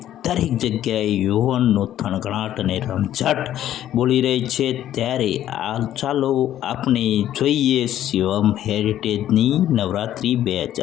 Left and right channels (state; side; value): quieter; right; 12.0 dB